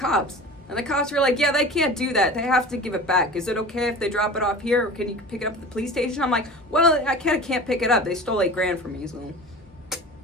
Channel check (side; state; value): both; normal; correlation 0.36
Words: And the cops were like, yeah, they can't do that. They have to give it back. Is it okay if they drop it off here? Or can you pick it up at the police station? I'm like, well, I can't pick it up. They stole $8,000 from me.